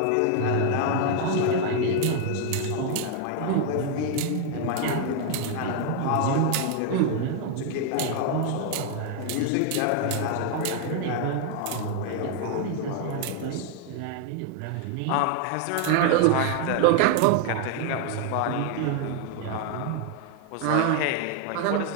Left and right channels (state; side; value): different; both; correlation 0.01